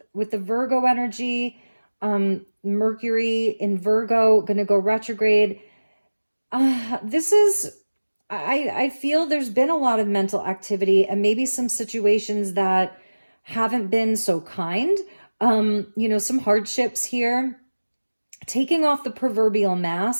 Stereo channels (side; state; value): both; inverted; correlation -1.00